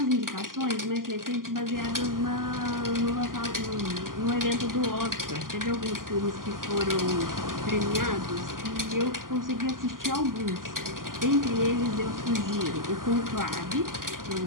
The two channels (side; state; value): left; late; 0.91 ms